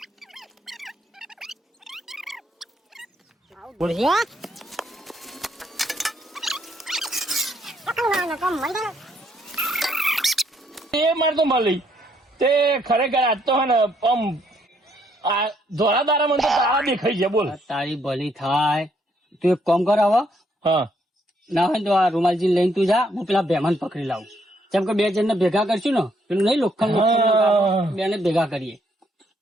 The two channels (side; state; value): both; normal; correlation 0.71